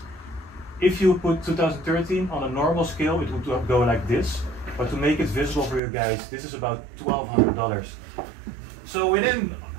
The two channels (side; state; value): left; drops out; at 5.8 s